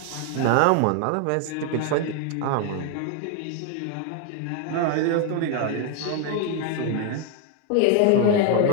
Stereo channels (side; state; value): both; different; correlation 0.01